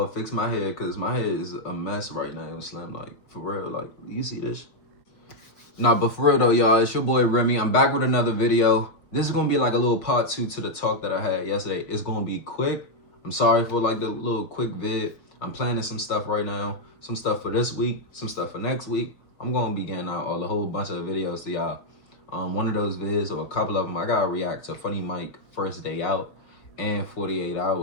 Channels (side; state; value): right; late; 5.7 ms